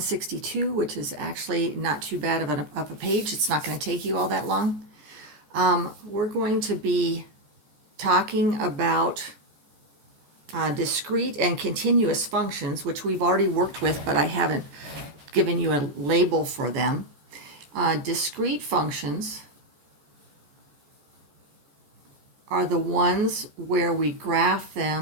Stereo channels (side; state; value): left; late; 14 ms